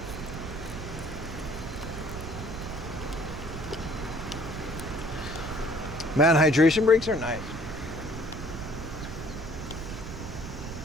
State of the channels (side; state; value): right; noise; rumble, 8 dB below the sound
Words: Man, hydration breaks are nice.